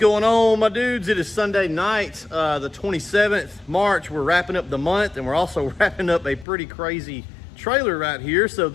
on, my dudes? It is Sunday night, the 27th March. We're wrapping up the month, and we're also wrapping up a pretty crazy trailer right here. So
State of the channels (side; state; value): right; drops out; at 6.5 s